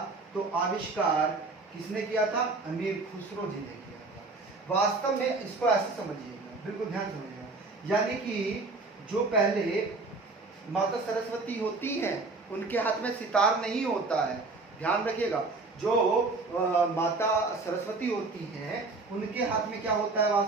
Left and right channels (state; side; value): quieter; left; 3.6 dB